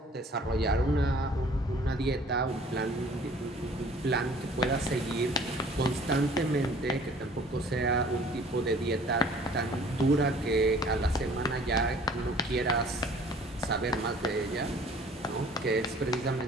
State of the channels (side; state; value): both; normal; correlation 0.52